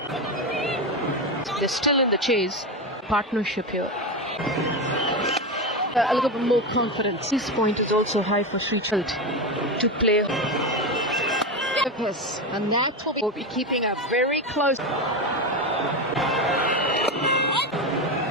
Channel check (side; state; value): both; normal; correlation 0.16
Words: They're still in the chase. Partnership here. A little bit more confidence. This point is also high for Sri Chalt to play. And that will be keeping a very close.